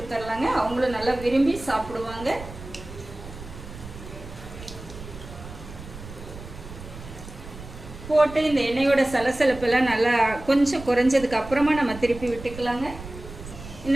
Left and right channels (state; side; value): noise; right; rumble, 14 dB below the sound